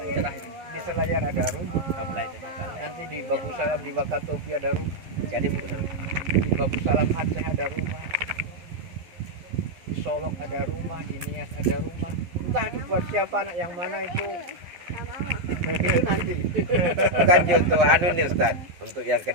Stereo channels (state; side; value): late; left; 11 ms